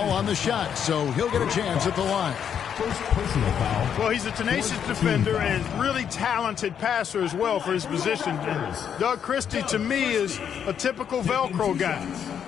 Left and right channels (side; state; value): right; quieter; 8.3 dB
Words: on the shot, so he'll get a chance at the line. First personal foul. Well, he's a tenacious defender and really talented passer as well for his position. And Doug Christie, to me, is a typical Velcro guy.